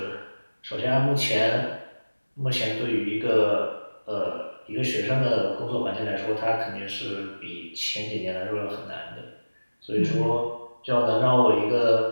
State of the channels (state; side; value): inverted; both; correlation -1.00